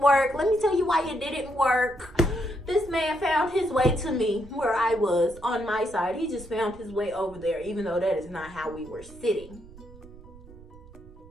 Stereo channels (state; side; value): noise; right; rumble, 20 dB below the sound